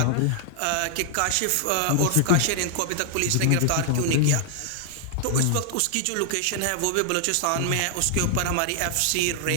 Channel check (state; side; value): different; both; correlation 0.00